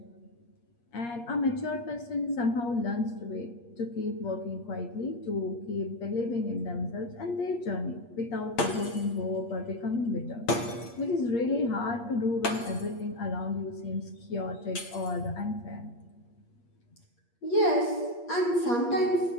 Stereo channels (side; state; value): right; late; 8.5 ms